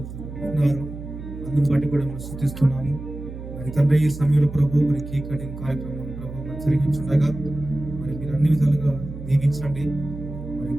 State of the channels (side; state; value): right; noise; hum, 11 dB below the sound